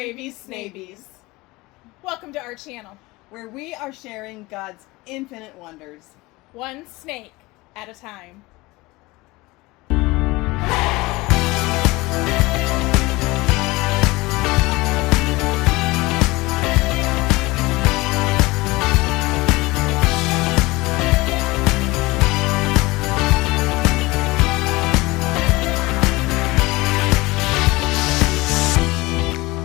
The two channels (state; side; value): quieter; right; 21.8 dB